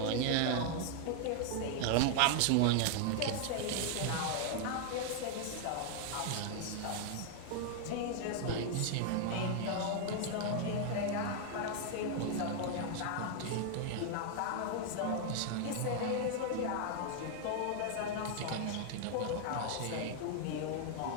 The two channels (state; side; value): different; both; correlation 0.00